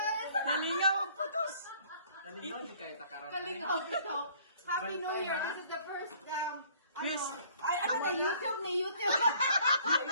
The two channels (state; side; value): inverted; both; correlation -0.56